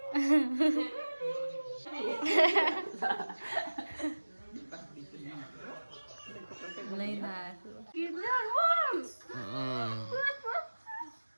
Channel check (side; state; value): both; inverted; correlation -1.00